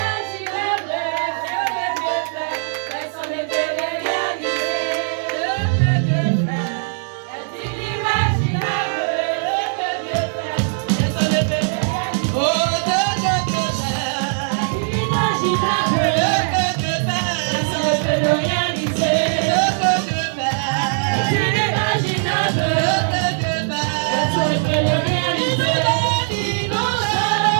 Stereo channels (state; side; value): silent; left; digital silence